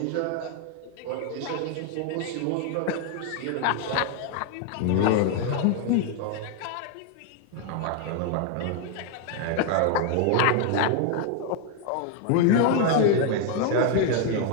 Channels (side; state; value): both; different; correlation 0.00